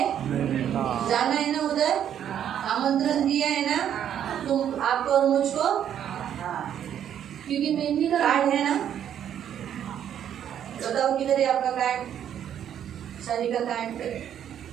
जाना है ना उधर, आमंत्रण दिया है ना तुम, आपको और मुझको। क्योंकि मेमने का कार्ड है ना, बताओ किधर है आपका कार्ड, शादी का कार्ड?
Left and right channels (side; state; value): left; quieter; 9.7 dB